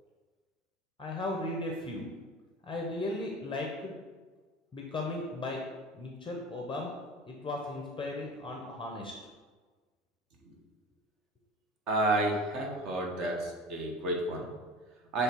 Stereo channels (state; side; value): normal; both; correlation 0.37